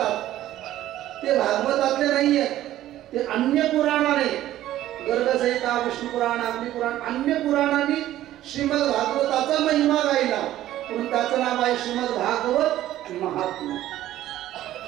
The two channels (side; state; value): left; quieter; 13.7 dB